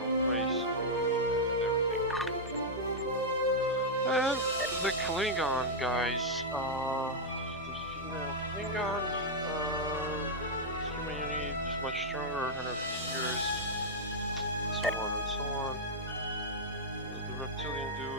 own race and everything. And the Klingon guys. The female Klingon. Human unit is much stronger, 150 years. So on and so on. The reptilian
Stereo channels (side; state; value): both; normal; correlation -0.04